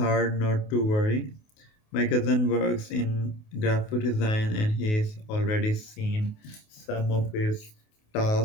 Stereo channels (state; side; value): late; right; 28 ms